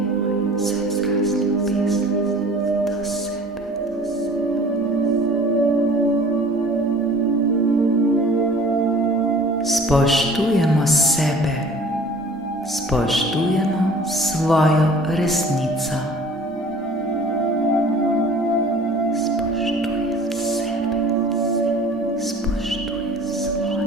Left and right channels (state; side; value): normal; both; correlation 0.47